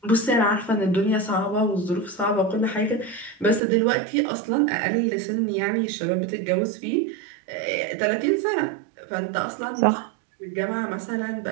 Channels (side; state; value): left; drops out; at 3.6 s